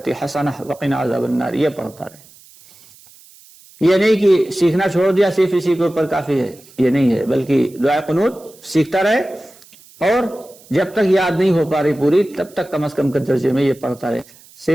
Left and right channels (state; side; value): noise; right; hiss, 25 dB below the sound